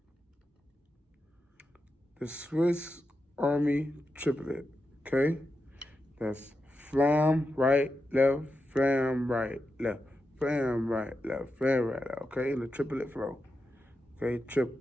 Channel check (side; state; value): both; normal; correlation 0.88